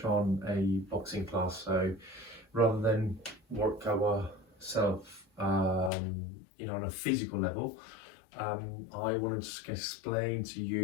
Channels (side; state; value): right; drops out; at 5.9 s